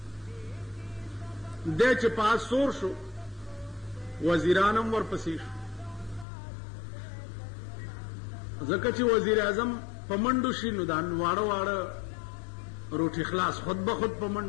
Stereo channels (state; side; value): drops out; right; at 6.2 s